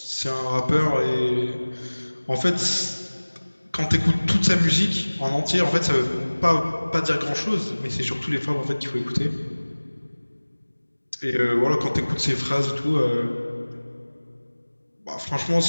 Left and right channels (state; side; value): inverted; both; correlation -1.00